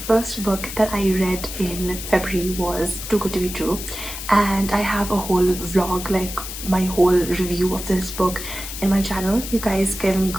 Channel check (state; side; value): noise; left; hiss, 8 dB below the sound